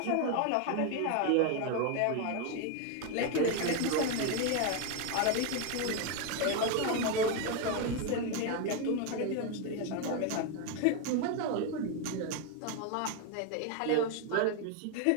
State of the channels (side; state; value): both; different; correlation 0.02